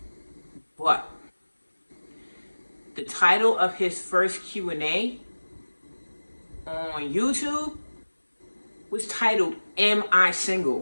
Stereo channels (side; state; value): both; inverted; correlation -1.00